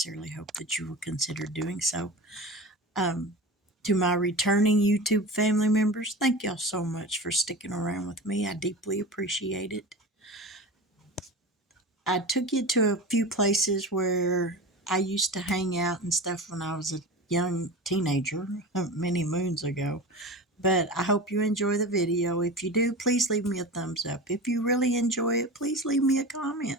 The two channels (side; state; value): both; normal; correlation 0.30